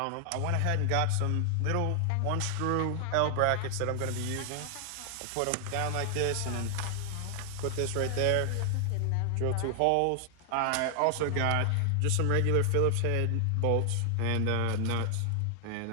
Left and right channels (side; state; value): both; different; correlation 0.00